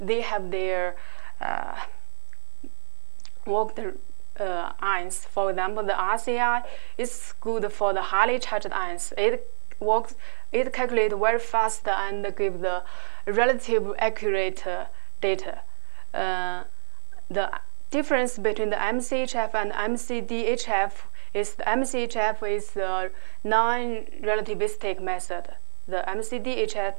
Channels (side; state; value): left; silent; digital silence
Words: have their worked ions. For example, the RCI is good for the highly charged ions. It calculates very fast and gives the relative accurate data. The difference between the MCHF and MCDHF is the MCHF is a non-relativistic method. The